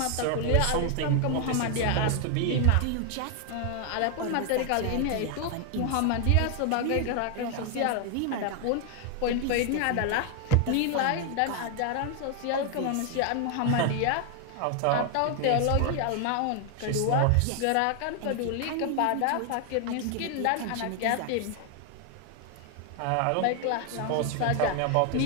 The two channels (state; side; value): different; both; correlation 0.00